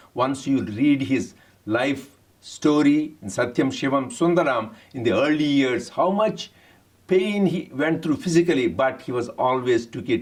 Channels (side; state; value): both; identical; correlation 1.00